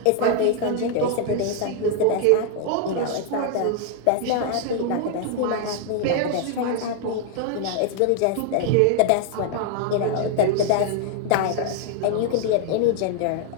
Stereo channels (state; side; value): different; both; correlation 0.00